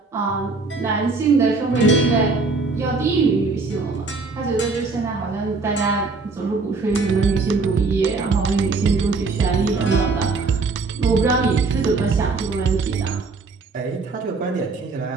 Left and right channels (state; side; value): quieter; left; 4.0 dB